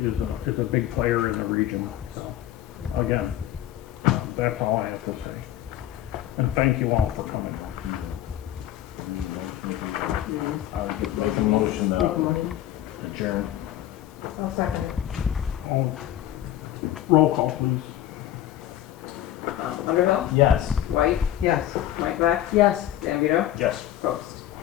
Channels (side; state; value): right; quieter; 12.6 dB